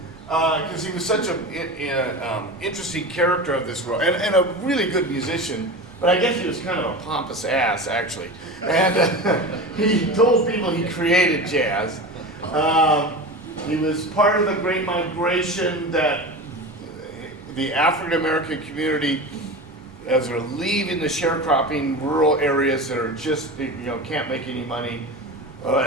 because he was such an interesting character of this world, and a really good musician, but I guess he was kind of a pompous ass, actually. And he told people he created jazz. He was part of the Great Migration that the African American community, as they're leaving the sharecropping rural areas that are just, can't make any money.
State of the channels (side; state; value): both; normal; correlation 0.28